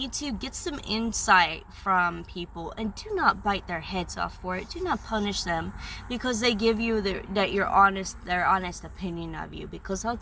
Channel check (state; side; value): identical; both; correlation 1.00